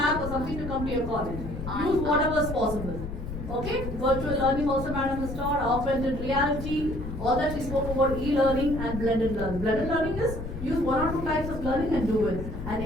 or something to come to your college. Use whatever is possible. Okay? Virtual learning also Madam has taught, augmented reality, all that we spoke about, e-learning and blended learning. Blended learning is use one or two types of learning and do it. And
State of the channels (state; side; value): noise; left; rumble, 8 dB below the sound